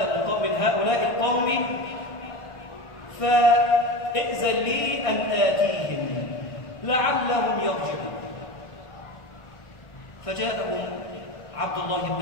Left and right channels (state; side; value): late; right; 1.6 ms